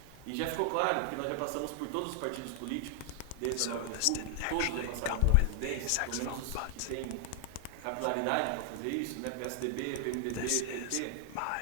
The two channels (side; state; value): both; different; correlation 0.00